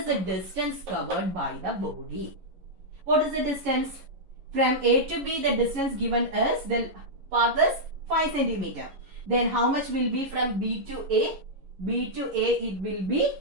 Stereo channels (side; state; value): left; late; 11 ms